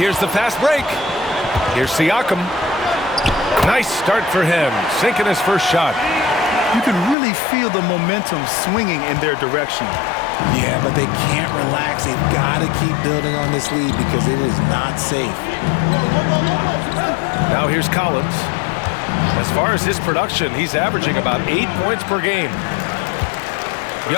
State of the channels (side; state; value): right; drops out; at 7.2 s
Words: the fast break. Here's Siakam. Nice start for him, sinking his first shot. You can really feel the momentum swinging in their direction. Yeah, but they can't relax. They've got to keep building on this lead because it is not safe. Now here's Collins. As far as his production, he's averaging about 8 points per game.